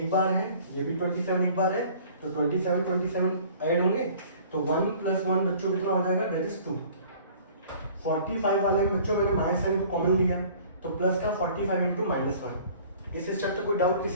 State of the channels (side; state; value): both; inverted; correlation -0.50